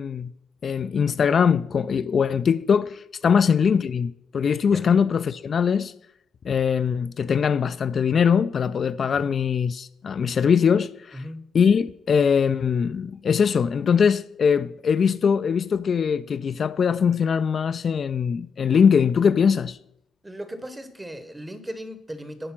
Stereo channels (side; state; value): right; quieter; 6.4 dB